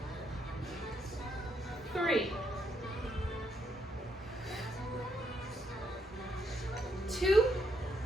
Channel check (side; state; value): both; normal; correlation 0.76